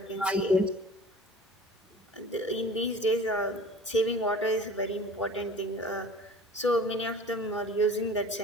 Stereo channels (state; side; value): normal; both; correlation 0.43